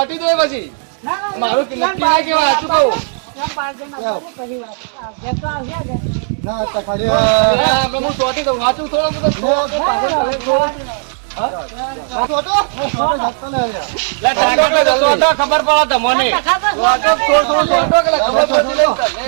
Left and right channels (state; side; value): silent; left; 70 dB below the other